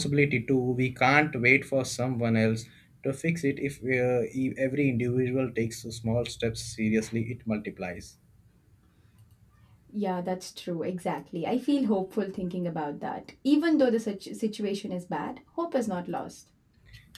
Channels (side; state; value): both; identical; correlation 1.00